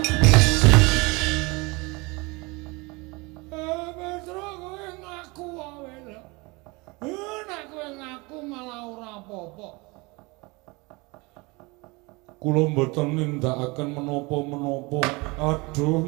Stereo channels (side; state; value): left; quieter; 26.0 dB